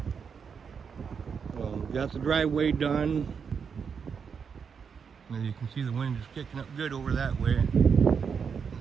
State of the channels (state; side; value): quieter; left; 6.4 dB